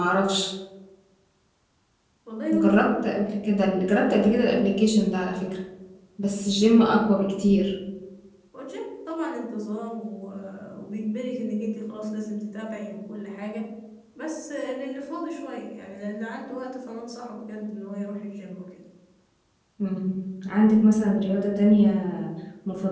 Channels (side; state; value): both; identical; correlation 1.00